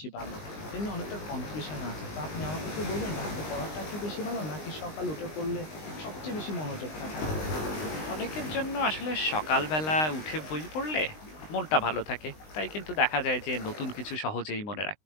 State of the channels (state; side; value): late; right; 19 ms